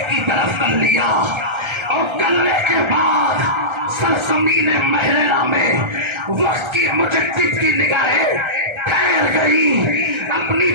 کی طرف کر لیا، اور کرنے کے بعد سرزمین محررہ میں وقت کی مجدد کی نگاہیں ٹھہر گئی، اپنی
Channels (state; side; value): late; left; 1.3 ms